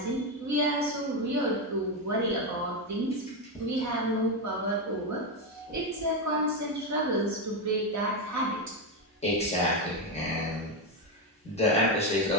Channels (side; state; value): both; normal; correlation 0.09